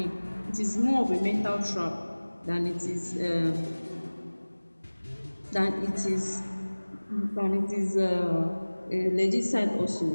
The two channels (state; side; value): inverted; both; correlation -1.00